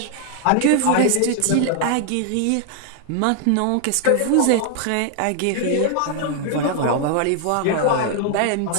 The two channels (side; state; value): both; different; correlation 0.00